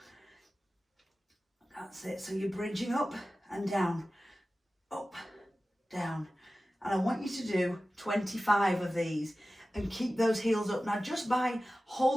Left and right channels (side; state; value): both; normal; correlation 0.95